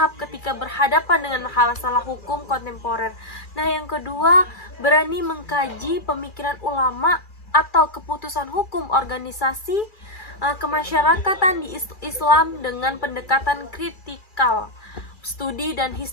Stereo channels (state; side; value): late; right; 2.4 ms